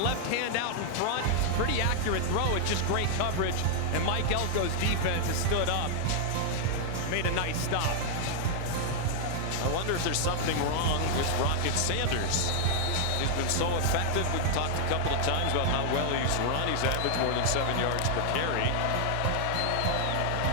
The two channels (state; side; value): different; both; correlation 0.00